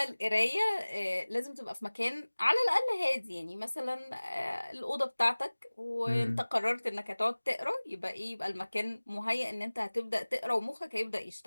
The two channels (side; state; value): both; inverted; correlation -1.00